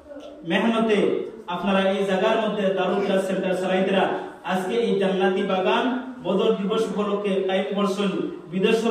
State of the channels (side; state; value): both; identical; correlation 1.00